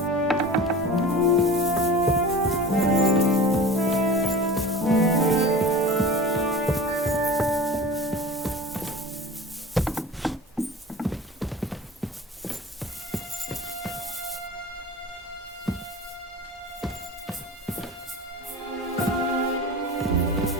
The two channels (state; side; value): normal; both; correlation 0.36